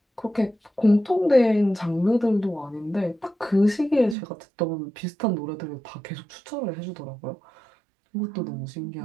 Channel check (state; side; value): drops out; left; at 4.2 s